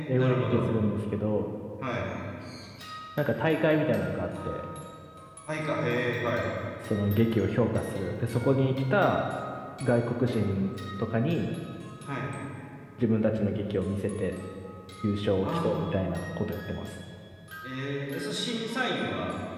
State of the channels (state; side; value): identical; both; correlation 1.00